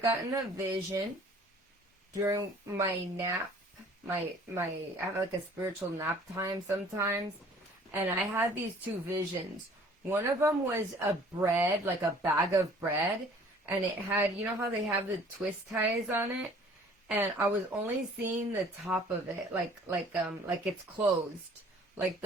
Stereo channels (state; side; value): normal; both; correlation 0.53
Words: gotten a vision during my nap. I have like a spiritual nap time sometimes, and I had these two visions. One of them was a bread, like a bag of bread, and it had, you know how they have the twist ties on it, and I was only seeing the top of it, like it's closed, like